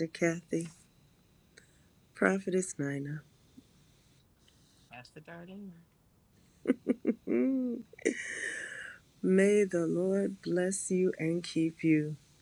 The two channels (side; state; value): both; identical; correlation 1.00